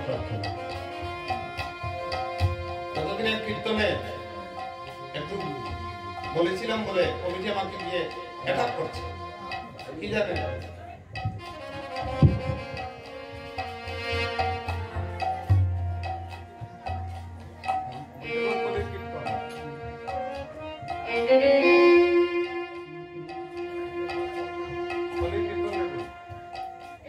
ততদিনের কীর্তনে একটু বলেছিলাম বলে কমিটি আমাকে গিয়ে অ্যাটাক করছে, কি জানেন?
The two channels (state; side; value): identical; both; correlation 1.00